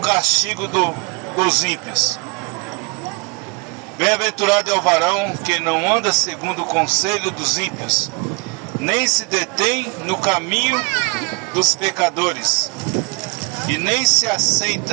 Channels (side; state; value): left; quieter; 30.6 dB